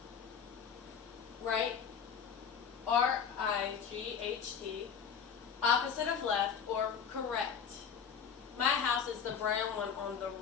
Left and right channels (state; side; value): quieter; right; 7.0 dB